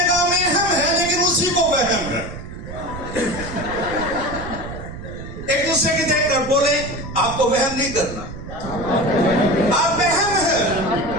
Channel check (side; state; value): right; noise; rumble, 11 dB below the sound